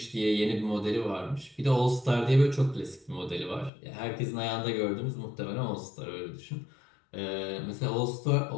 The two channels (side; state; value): right; drops out; at 3.7 s